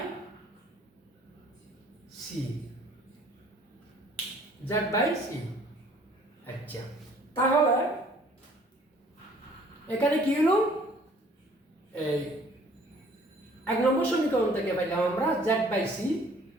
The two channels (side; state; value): both; normal; correlation 0.56